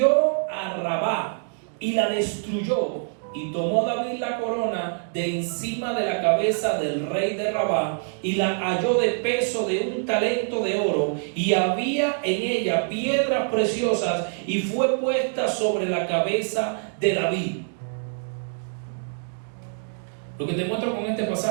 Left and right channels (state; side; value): silent; left; digital silence